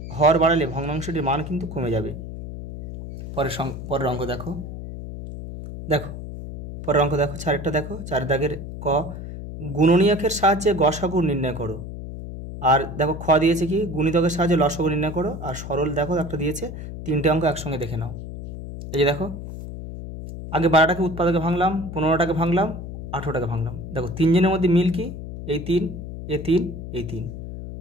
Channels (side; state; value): left; noise; hum, 9 dB below the sound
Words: হর বাড়ালে ভগ্নাংশটির মান কিন্তু কমে যাবে। পরের অঙ্ক দেখো পরের অঙ্ক দেখো, 4-একটা দেখো। 4 দাগের ক, গুণনীয়কের সাহায্যে গসাগু নির্ণয় করো। আর দেখো খ দিয়েছে কি? গুণিতকের সাহায্যে লসাগু নির্ণয় করো। আর সরল দেখো একটা দিয়েছে, 3টে অঙ্ক একসঙ্গে দেখে নাও। এই যে দেখো আগে 12টাকে উৎপাদকে ভাঙলাম, 15টাকে ভাঙলাম, 18টাকে ভাঙলাম। দেখো 3 জনের মধ্যে মিল কি? এই 3, এই 3, এই 3,